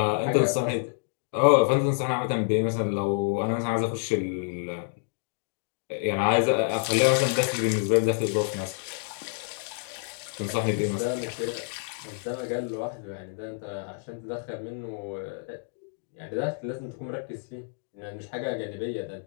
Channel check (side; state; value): right; silent; digital silence